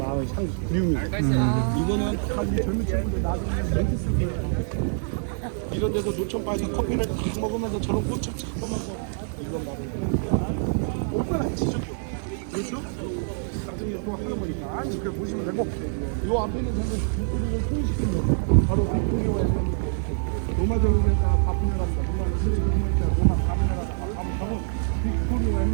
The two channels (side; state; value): left; silent; digital silence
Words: 그리움이. 이거는 다 우리 젊은 친구들 나중에 멘트 쓰기. 이런 데서 노천바에서 커피를 딱 먹으면서 저런 꽃을 잡으면서 이건 바로 오빠랑 지적도. 그렇죠? 나중에 또 하는 거니까 이렇게 보시면 되고 이 앞에 있는 전부 빅토리를 통일시키는 거 바로 빅토리와 로마적으로니까 바쁘냐랍니다. 로마 바쁘냐랍니다. 바쁘냐고 빅토리와